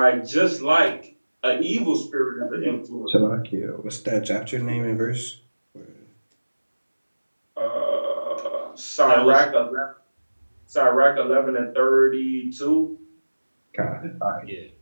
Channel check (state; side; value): inverted; both; correlation -1.00